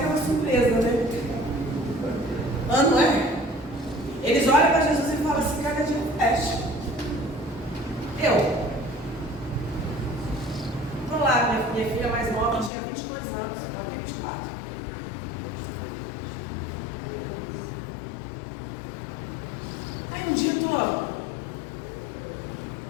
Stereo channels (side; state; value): right; drops out; at 12.7 s